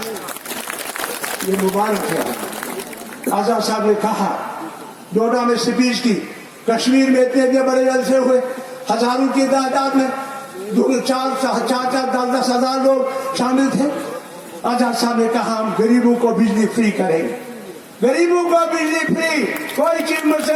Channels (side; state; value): both; identical; correlation 1.00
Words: ये मुबारक है। आजाद साहब ने कहा, डोडा में स्पीच की, कश्मीर में इतने बड़े जलसे हुए, हजारों की तादाद में 4-10 हजार लोग शामिल थे। आजाद साहब ने कहा हम गरीबों को बिजली फ्री करेंगे, गरीबों को बिजली फ्री। कोई चीज